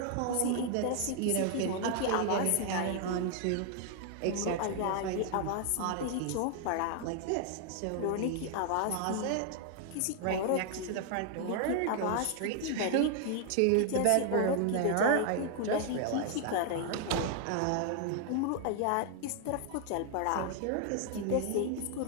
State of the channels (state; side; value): different; both; correlation 0.00